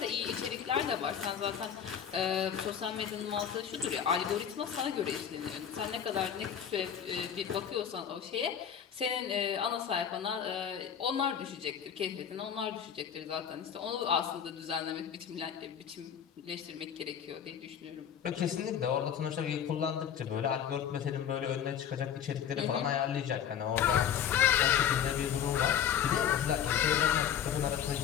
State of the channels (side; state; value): right; quieter; 8.8 dB